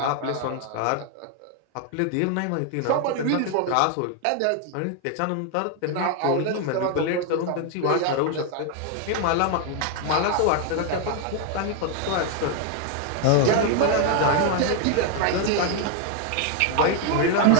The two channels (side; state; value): both; different; correlation 0.00